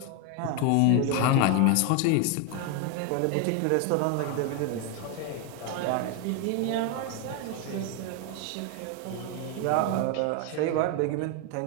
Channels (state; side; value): different; both; correlation 0.01